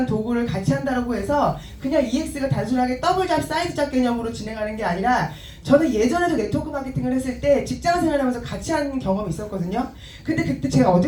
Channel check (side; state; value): both; identical; correlation 1.00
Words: 도구를 같이 한다고 해서 그냥 EX가 단순하게 더블잡 사이드잡 개념으로 진행하는 게 아니라 저는 예전에도 네트워크 마케팅을 했을 때 직장 생활하면서 같이 하는 경험이 있었거든요. 근데 그때 제가